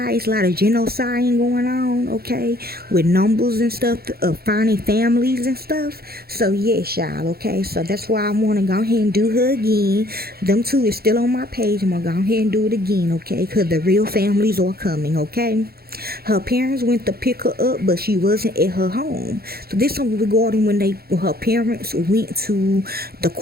It's a lot of genocide going on, okay, with numbers and stuff of finding families and stuff. So yes, y'all, okay. So that's why I want to go ahead and do her again. Them two is still on my page. I'm gonna go ahead and do it again, okay, because the real families are coming, okay. Her parents went to pick her up, but she wasn't at her home. So this one regarding when her parents went to the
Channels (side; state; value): left; late; 0.45 ms